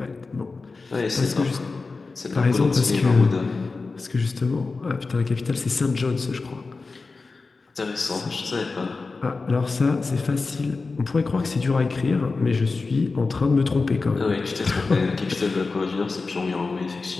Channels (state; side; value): quieter; right; 4.0 dB